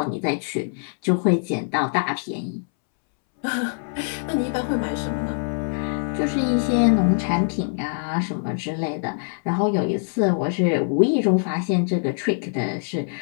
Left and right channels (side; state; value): right; silent; 63 dB below the other